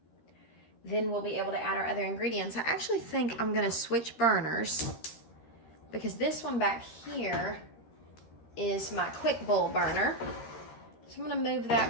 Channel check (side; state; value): right; late; 13 ms